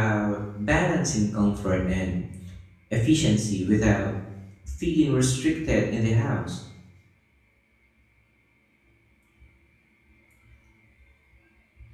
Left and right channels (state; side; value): identical; both; correlation 1.00